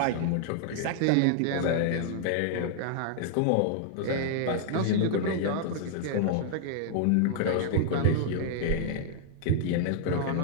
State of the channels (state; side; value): different; both; correlation -0.01